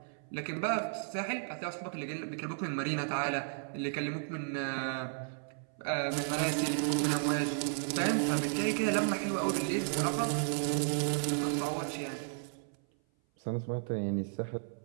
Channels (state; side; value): silent; left; 55 dB below the other